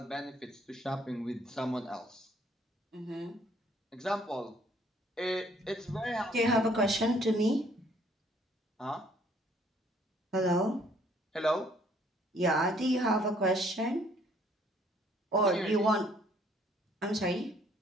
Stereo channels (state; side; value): normal; both; correlation 0.62